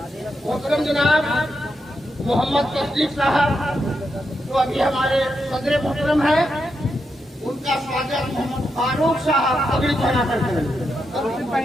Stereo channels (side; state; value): both; normal; correlation 0.84